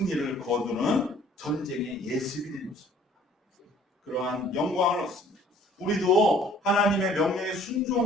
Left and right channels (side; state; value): both; normal; correlation 0.55